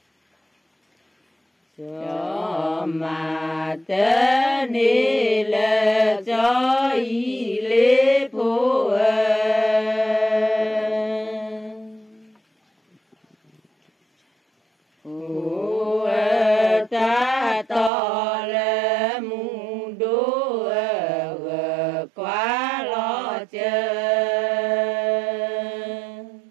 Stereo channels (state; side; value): drops out; left; at 17.9 s